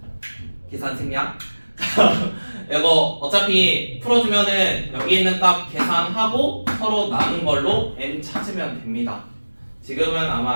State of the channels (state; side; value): inverted; both; correlation -1.00